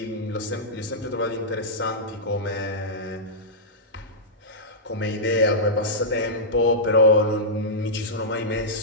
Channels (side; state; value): both; normal; correlation -0.12